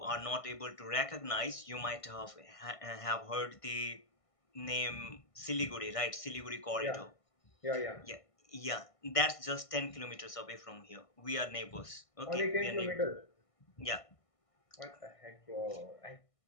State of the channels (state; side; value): late; right; 1.6 ms